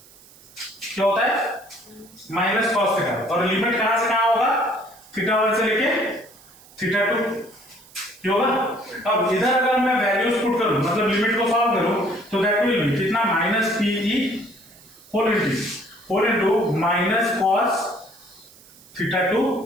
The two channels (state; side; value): noise; right; hiss, 24 dB below the sound